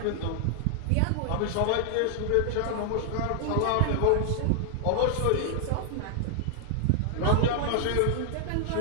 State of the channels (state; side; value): different; both; correlation 0.00